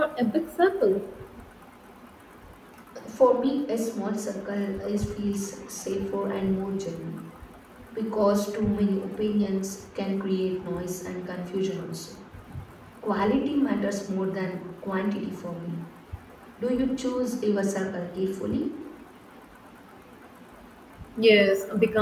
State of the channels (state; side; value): identical; both; correlation 1.00